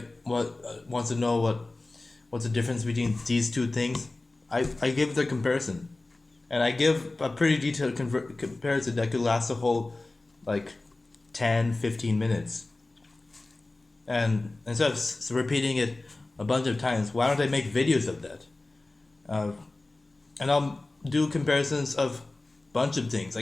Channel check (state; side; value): quieter; right; 3.0 dB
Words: wants to know what's the difference between these two things, I give the comparison, and I give a pretty detailed comparison that could last a whole like 10-15 minutes. And instead of repeating it a bunch of times, why don't I make videos of that? Uh, and I'll do comparisons of bunch of things.